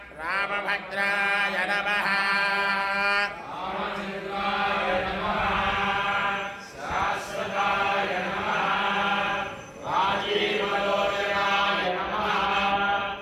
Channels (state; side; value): identical; both; correlation 1.00